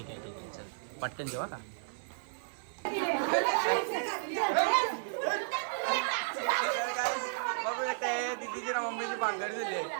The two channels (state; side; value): silent; left; 56 dB below the other